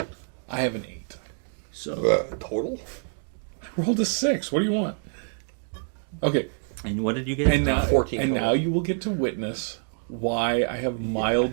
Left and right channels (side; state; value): left; silent; digital silence